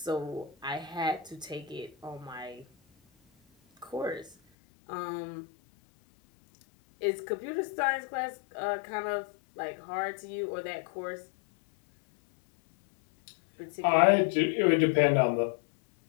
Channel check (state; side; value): drops out; right; at 4.4 s